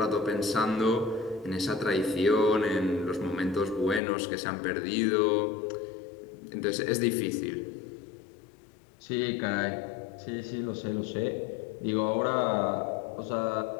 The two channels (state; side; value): drops out; right; at 4.0 s